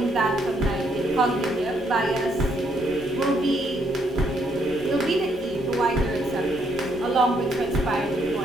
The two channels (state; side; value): normal; both; correlation 0.72